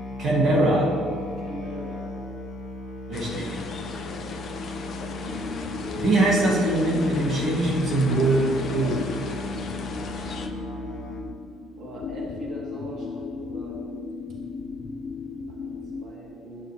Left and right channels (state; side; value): normal; both; correlation 0.64